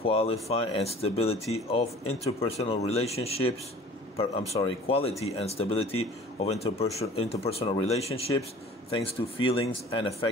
and stability of interpersonal relationships. Quality and stability of interpersonal relationships, thanks to feelings and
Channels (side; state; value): both; normal; correlation 0.46